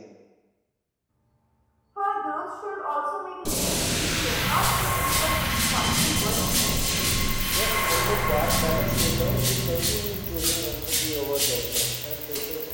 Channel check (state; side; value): identical; both; correlation 1.00